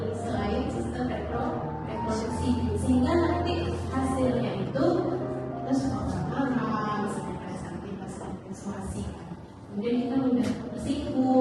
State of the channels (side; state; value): both; identical; correlation 1.00